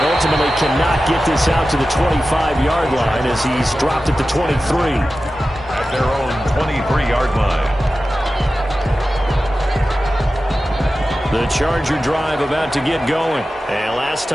ultimately cannot get this out to the 25-yard line as he's dropped at the 23. At their own 23-yard line. The Charger drive about to get going. And last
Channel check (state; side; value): normal; both; correlation 0.94